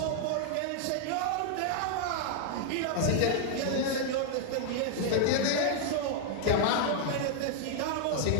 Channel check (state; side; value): different; both; correlation 0.00